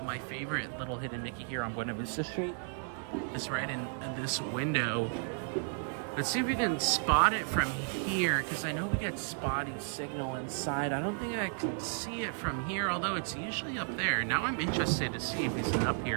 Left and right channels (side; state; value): left; silent; 55 dB below the other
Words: my favorite little hidden Mickey here on Buena Vista Street is right in this window. Let's see if we can spot it from here, because I know we get spotty signal inside. I don't think I can see it from here, although it's usually up there. Now I'm interested to see if he's up